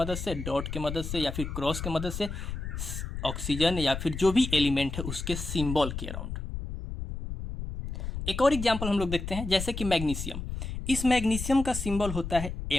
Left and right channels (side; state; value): left; noise; rumble, 6 dB below the sound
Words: से, डॉट के मदद से या फिर क्रॉस के मदद से, ऑक्सीजन या फिर जो भी एलिमेंट है उसके सिंबल के अराउंड। एक और एग्जांपल हम लोग देखते हैं, जैसे कि मैग्नीशियम। इस मैग्नीशियम का सिंबल होता है